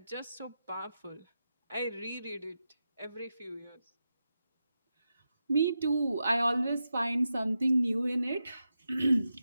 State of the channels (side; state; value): both; inverted; correlation -0.89